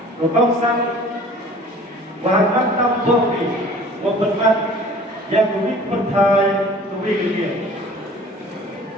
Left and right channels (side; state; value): both; normal; correlation 0.47